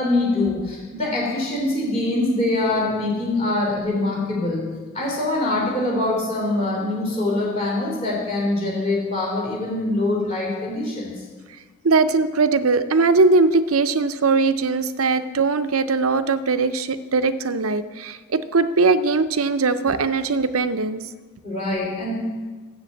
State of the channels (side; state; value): both; normal; correlation 0.11